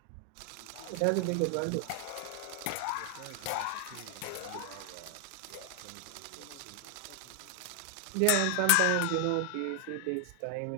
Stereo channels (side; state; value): both; different; correlation 0.00